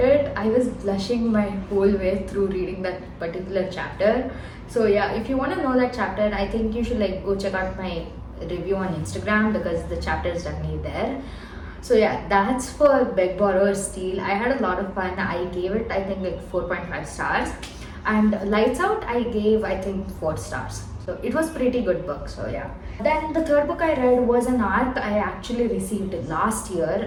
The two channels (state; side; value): identical; both; correlation 1.00